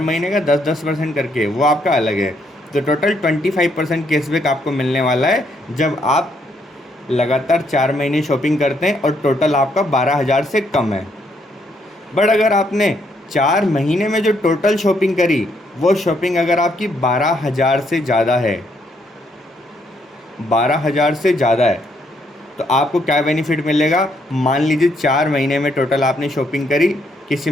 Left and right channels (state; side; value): normal; both; correlation 0.73